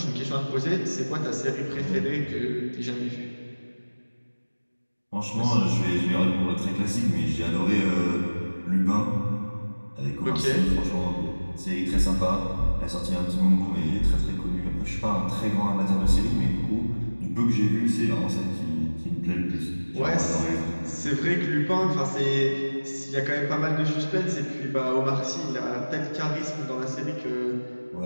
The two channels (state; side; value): inverted; both; correlation -1.00